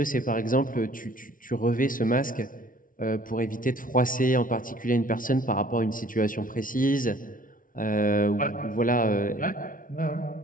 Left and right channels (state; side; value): late; right; 0.39 ms